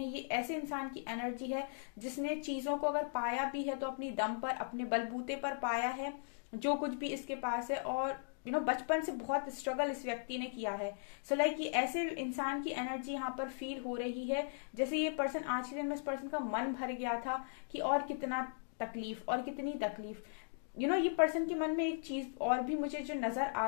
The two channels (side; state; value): right; silent; digital silence